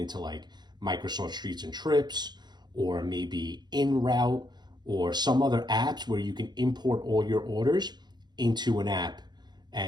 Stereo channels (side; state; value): left; late; 0.21 ms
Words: like Microsoft Streets and Trips, or maybe In Route, or some other apps where you can import all your orders into an app,